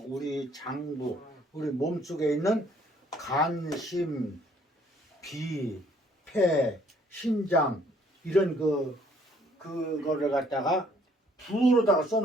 우리 장부, 우리 몸속에 있는 간, 심, 비, 폐, 신장 이런 그거를 갖다가 부호로다가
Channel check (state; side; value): normal; both; correlation 0.63